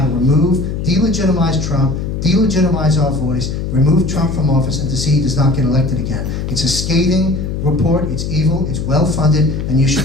to remove, delegitimize Trump, delegitimize our voice, remove Trump from office, and to see he does not get elected again. It's a scathing report, it's evil, it's well-funded, and you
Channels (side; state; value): left; noise; hum, 3 dB below the sound